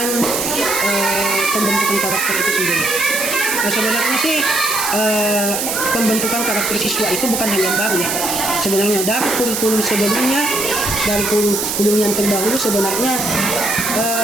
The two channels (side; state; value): right; noise; hiss, 2 dB below the sound